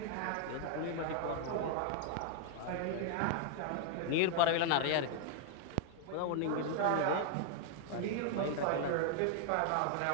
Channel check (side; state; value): both; different; correlation 0.00